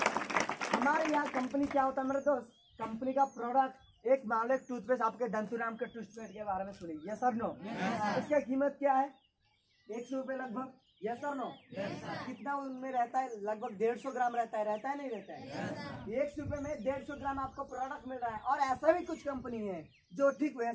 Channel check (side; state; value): both; identical; correlation 1.00